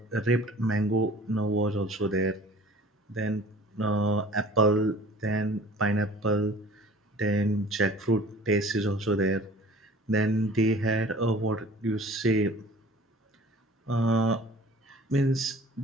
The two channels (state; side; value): normal; both; correlation 0.46